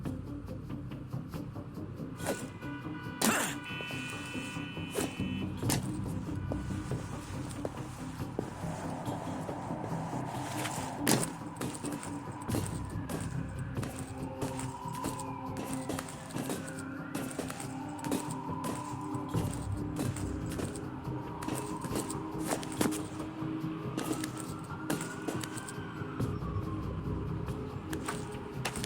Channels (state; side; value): identical; both; correlation 1.00